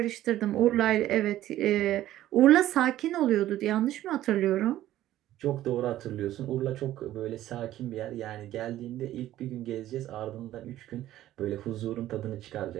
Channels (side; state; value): left; quieter; 13.8 dB